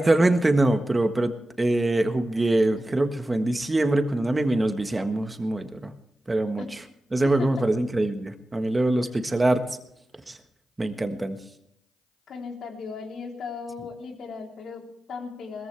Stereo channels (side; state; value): both; normal; correlation 0.94